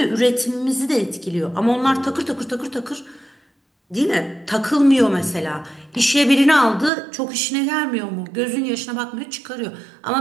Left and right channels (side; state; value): left; drops out; at 6.9 s